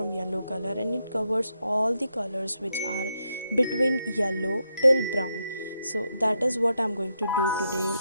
yellow color and it covers all the colors which are between yellow till brown. So that is what I'm going to do today.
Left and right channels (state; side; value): inverted; both; correlation -0.82